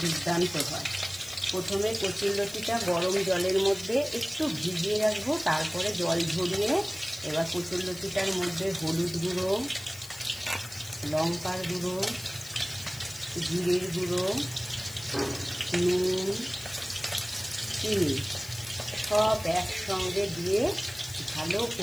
দুর্দান্ত হয়। প্রথমে কচুরলতিটা গরম জলের মধ্যে একটু ভিজিয়ে রাখবো, তারপরে জল ঝরিয়ে এবার কচুরলতিটার মধ্যে হলুদ গুঁড়ো, লঙ্কার গুঁড়ো, জিরের গুঁড়ো, নুন, চিনি সব একসঙ্গে দিয়ে ভালো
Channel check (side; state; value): left; noise; hiss, 16 dB below the sound